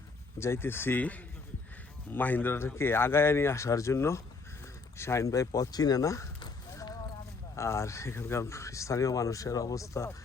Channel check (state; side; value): quieter; right; 4.2 dB